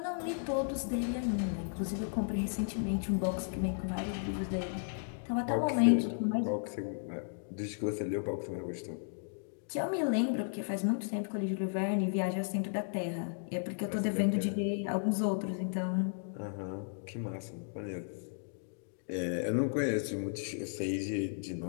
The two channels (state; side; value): silent; right; digital silence